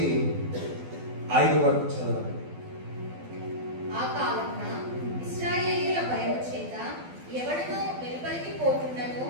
5 వరకు చదవండి. ఆ కాలమున ఇశ్రాయేలీయుల భయము చేత ఎవడనూ వెలుపలికి పోకుండాను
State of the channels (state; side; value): late; left; 12 ms